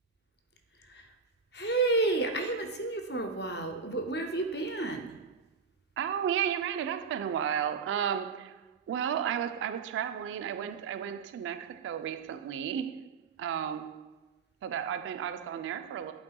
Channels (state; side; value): quieter; left; 5.5 dB